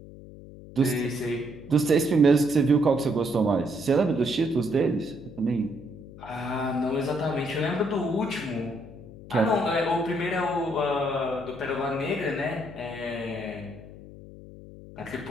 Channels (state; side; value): noise; left; hum, 16 dB below the sound